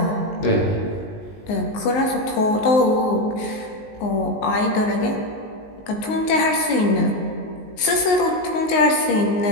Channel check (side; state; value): right; late; 19 ms